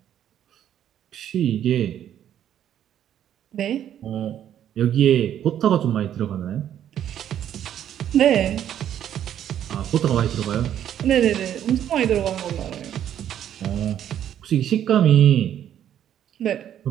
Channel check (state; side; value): quieter; left; 10.4 dB